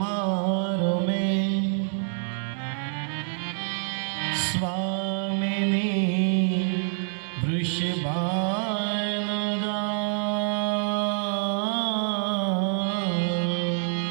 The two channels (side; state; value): left; silent; digital silence